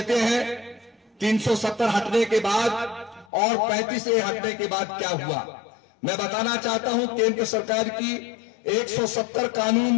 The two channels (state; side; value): drops out; right; at 3.2 s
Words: हैं 370 हटने के बाद और 35A हटने के बाद क्या हुआ। मैं बताना चाहता हूं, केंद्र सरकार की 170